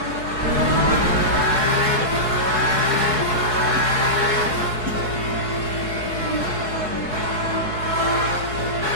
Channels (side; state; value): left; late; 4.7 ms